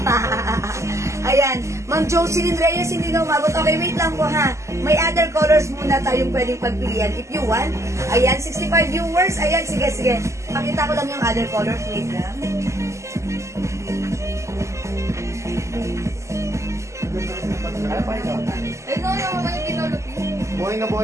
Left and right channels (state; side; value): late; left; 0.14 ms